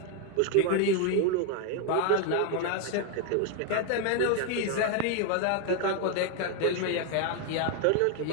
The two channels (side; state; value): both; different; correlation 0.01